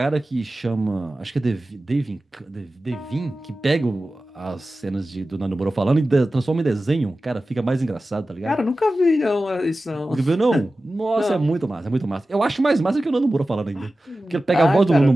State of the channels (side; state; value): both; normal; correlation 0.95